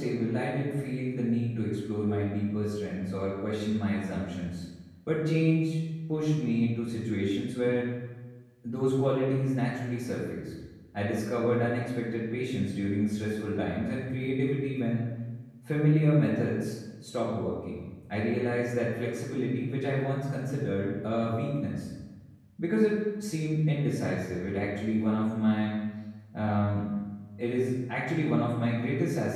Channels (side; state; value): both; identical; correlation 1.00